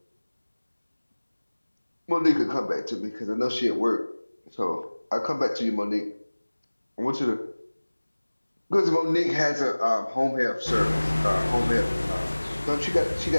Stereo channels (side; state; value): both; inverted; correlation -1.00